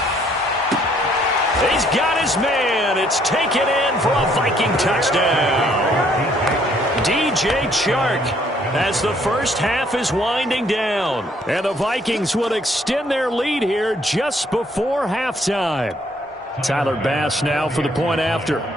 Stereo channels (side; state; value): both; normal; correlation 0.66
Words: He's got his man. It's taken in for a Viking touchdown. DJ Chark as the first half is winding down. And the Vikings will extend their lead here just before halftime. Tyler Bass now for the point after.